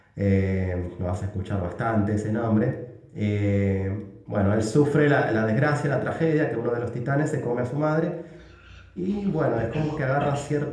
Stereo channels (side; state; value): both; identical; correlation 1.00